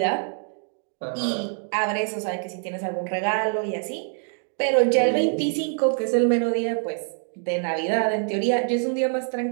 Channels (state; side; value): silent; left; 62 dB below the other